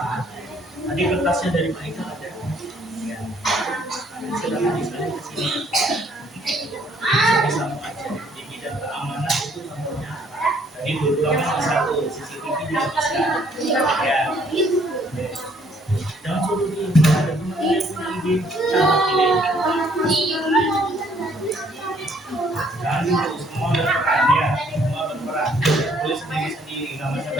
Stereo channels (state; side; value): normal; both; correlation 0.64